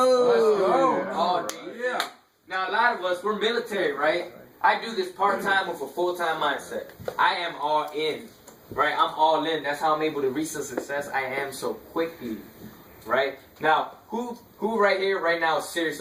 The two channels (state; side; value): identical; both; correlation 1.00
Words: All day. Yeah. Now a lot of us, we're military, right? I do this part time with a full time mindset. I am all in, right? I'm all in. That's how I'm able to reach the success I am so quickly, right? Now, who right here, right now, is serious